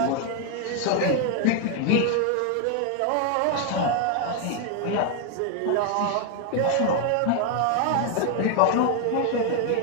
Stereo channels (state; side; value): different; both; correlation 0.00